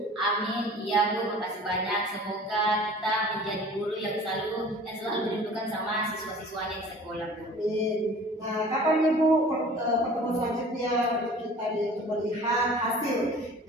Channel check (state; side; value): normal; both; correlation 0.45